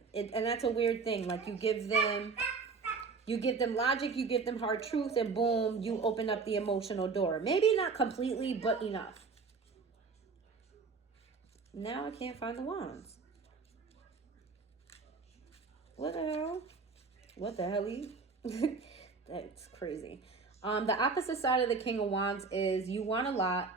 And that's a weird thing. Like, you give them logic, you give them hard truth, and boom, you open up the emotional door. Maybe not completely, but enough. Now I can't find the wands. What the hell? What the hell? That's crazy. The opposite side of the King of Wands is you want a lot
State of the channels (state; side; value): quieter; left; 4.7 dB